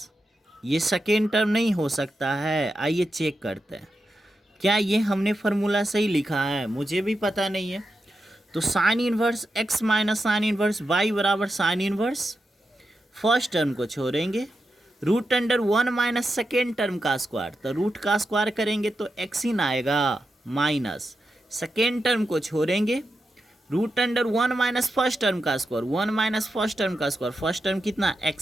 ये सेकेंड टर्म नहीं हो सकता है। आइए चेक करते हैं क्या ये हमने फार्मूला सही लिखा है। मुझे भी पता नहीं है। तो sine inverse x minus sine inverse y बराबर साइन इन्वर्स, फर्स्ट टर्म को छोड़ेंगे, root under 1 minus second term का स्क्वायर, तो रूट का स्क्वायर करेंगे तो एक्स इन आएगा, माइनस सेकेंड टर्म को छोड़ेंगे, root under 1 minus first term का स्क्वायर, 1 माइनस फर्स्ट टर्म का स्क्वायर, फर्स्ट टर्म कितना,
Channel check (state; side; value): normal; both; correlation 0.88